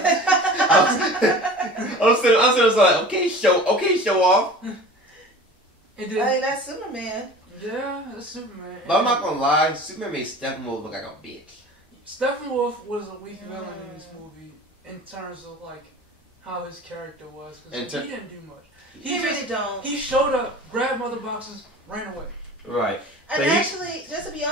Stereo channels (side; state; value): both; normal; correlation 0.40